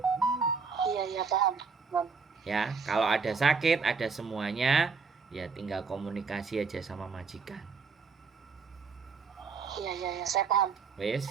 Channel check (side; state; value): left; quieter; 5.1 dB